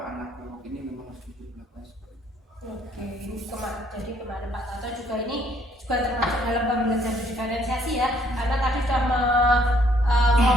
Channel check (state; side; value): normal; both; correlation 0.65